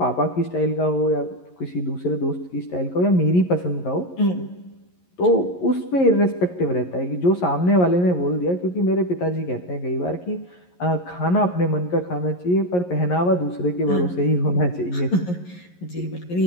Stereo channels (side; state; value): right; late; 11 ms